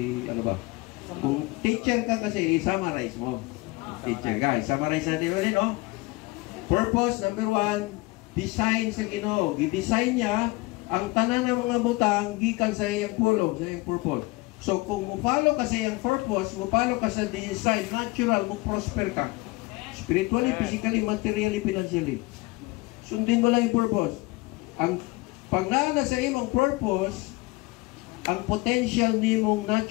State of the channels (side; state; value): right; quieter; 23.0 dB